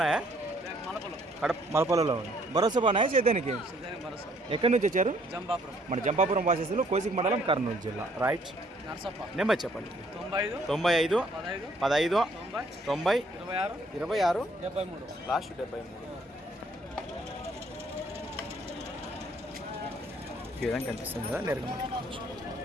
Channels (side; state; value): both; normal; correlation 0.63